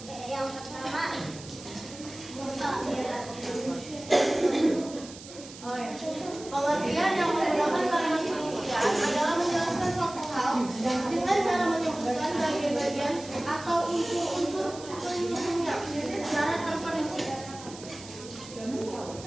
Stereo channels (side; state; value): right; noise; hiss, 16 dB below the sound